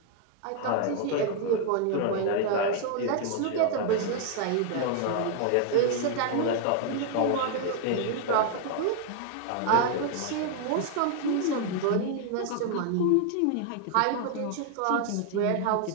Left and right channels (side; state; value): both; different; correlation 0.00